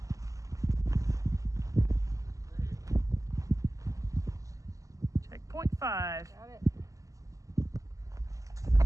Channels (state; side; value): late; left; 0.16 ms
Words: Checkpoint 5. Got it.